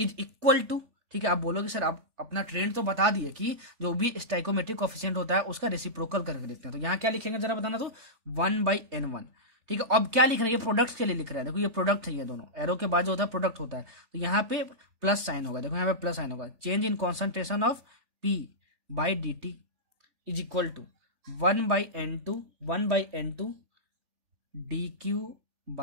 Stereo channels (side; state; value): left; late; 3.4 ms